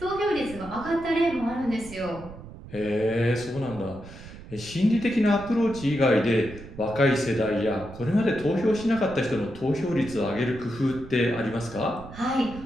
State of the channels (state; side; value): noise; right; rumble, 15 dB below the sound